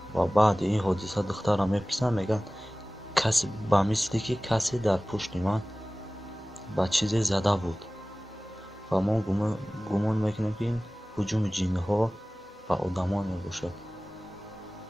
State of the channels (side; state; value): both; normal; correlation 0.98